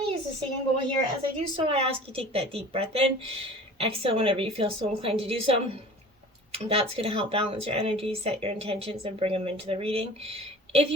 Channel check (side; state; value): both; normal; correlation 0.42